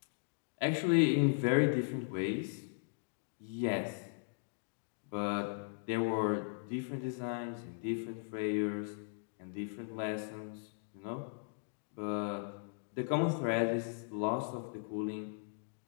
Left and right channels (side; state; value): right; silent; digital silence